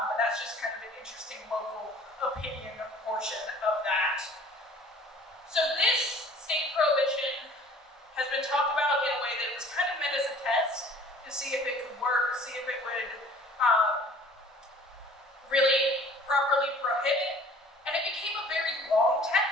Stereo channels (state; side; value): normal; both; correlation 0.50